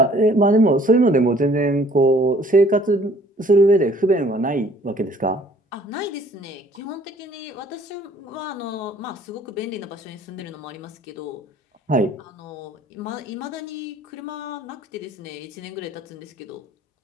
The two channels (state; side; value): normal; both; correlation 0.57